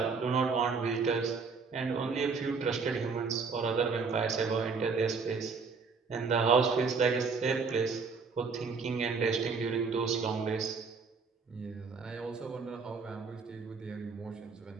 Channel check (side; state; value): left; quieter; 5.0 dB